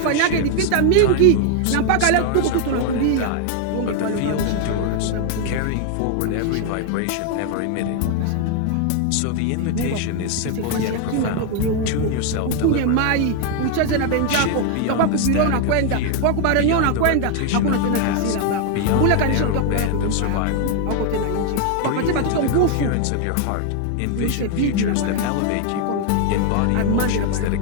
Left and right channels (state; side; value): different; both; correlation 0.00